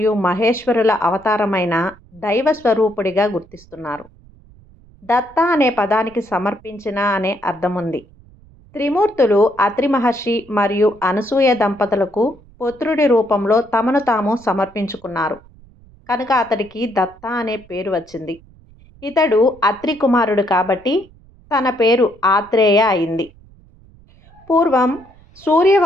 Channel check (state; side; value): noise; right; rumble, 26 dB below the sound